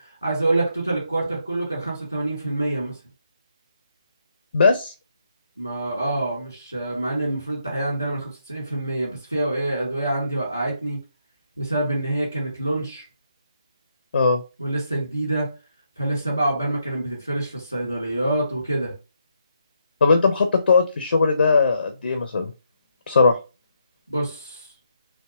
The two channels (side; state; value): both; inverted; correlation -0.78